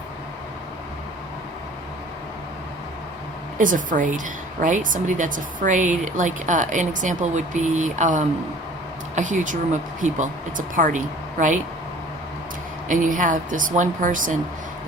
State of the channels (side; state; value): both; normal; correlation 0.48